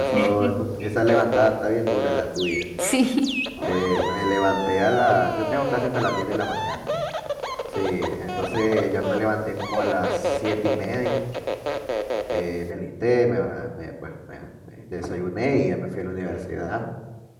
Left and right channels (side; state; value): both; identical; correlation 1.00